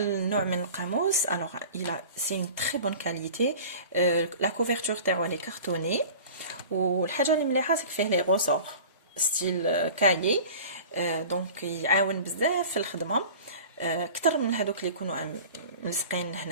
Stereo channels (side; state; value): both; inverted; correlation -0.40